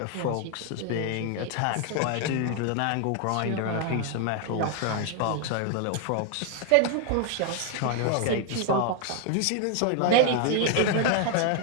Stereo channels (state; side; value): different; both; correlation 0.00